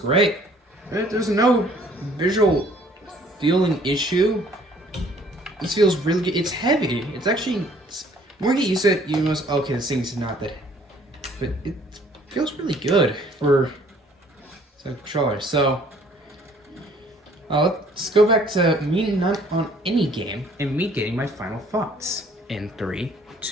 Right? There's no visual feeling issue. This feels really good. It's heavy. It's actually more you get used to it, you must okay, this thing's not that, but it feels really good for a controller. So let's go back to me not on any game and me getting my final thoughts in 3,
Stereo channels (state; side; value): normal; both; correlation 0.58